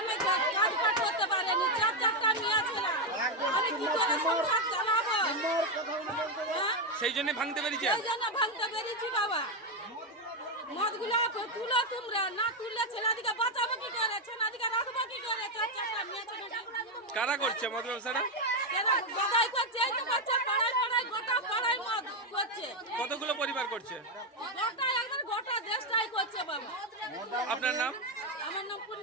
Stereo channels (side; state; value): both; normal; correlation 0.06